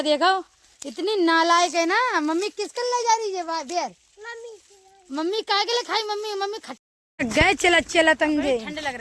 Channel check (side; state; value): both; identical; correlation 1.00